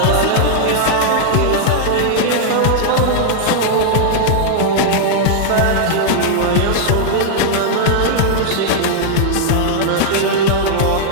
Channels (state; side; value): different; both; correlation -0.01